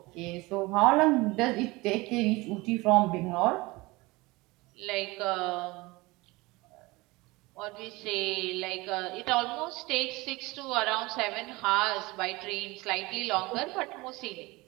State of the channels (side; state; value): left; quieter; 22.5 dB